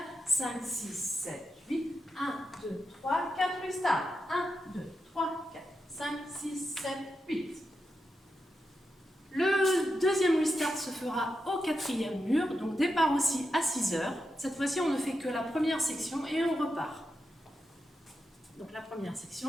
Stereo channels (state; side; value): normal; both; correlation 0.87